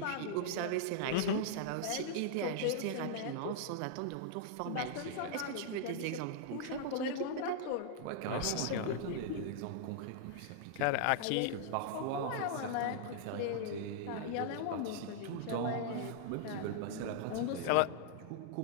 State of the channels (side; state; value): both; different; correlation -0.01